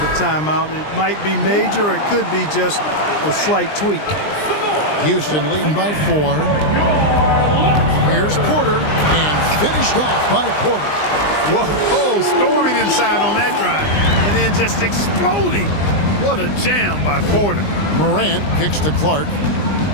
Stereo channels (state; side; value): late; right; 20 ms